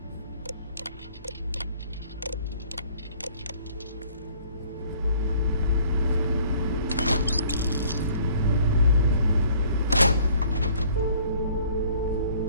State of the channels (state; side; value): inverted; both; correlation -0.56